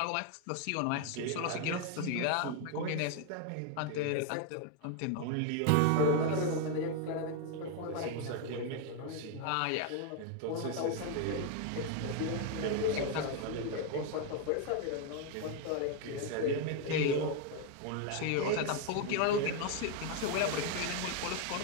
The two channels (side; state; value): both; different; correlation 0.01